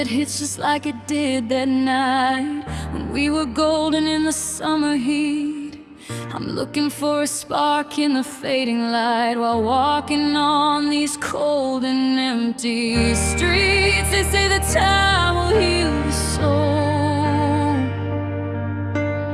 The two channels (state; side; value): identical; both; correlation 1.00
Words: hits just like it did that night when we were golden in the summer heat. I'm looking for a spark in the fading light while walking on these cold and empty streets. They say that time will heal the soul,